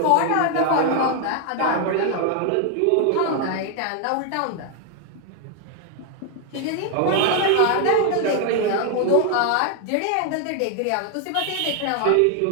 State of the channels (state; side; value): different; both; correlation 0.00